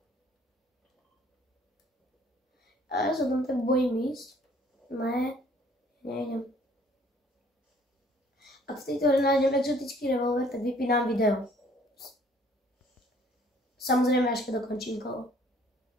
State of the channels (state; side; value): normal; both; correlation 0.58